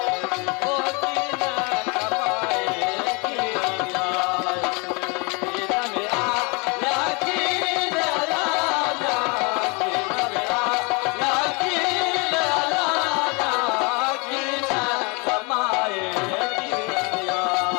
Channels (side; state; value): right; quieter; 30.2 dB